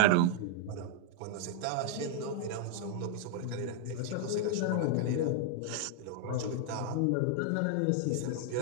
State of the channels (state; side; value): different; both; correlation 0.00